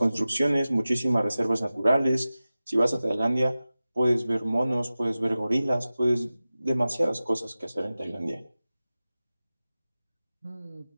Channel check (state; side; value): inverted; both; correlation -0.96